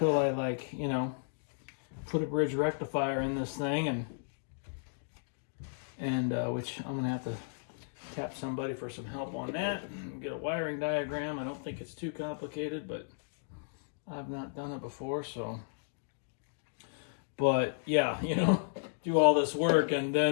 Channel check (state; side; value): silent; right; digital silence